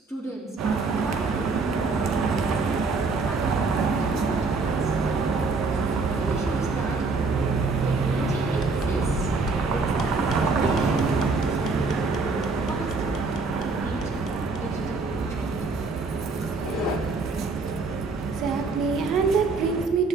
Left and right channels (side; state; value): left; quieter; 4.0 dB